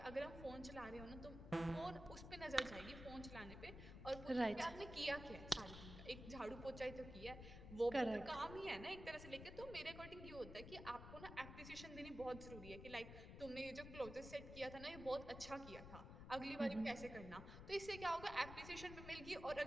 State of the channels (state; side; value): noise; left; rumble, 10 dB below the sound